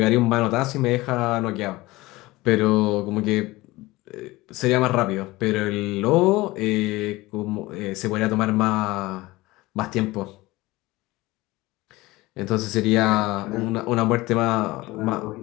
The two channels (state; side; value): quieter; right; 20.0 dB